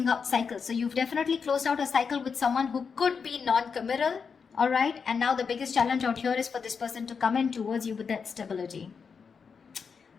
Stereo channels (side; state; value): right; quieter; 5.8 dB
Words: out cycles. So you've definitely closed out a cycle with someone who could be non-committal, all right? And now the biggest challenge out here is for this person to come in towards you with that stability.